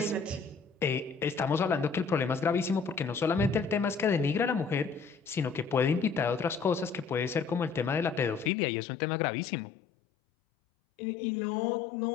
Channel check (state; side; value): drops out; right; at 8.5 s